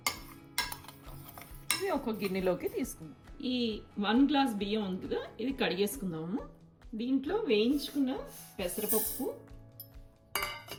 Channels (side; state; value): both; identical; correlation 1.00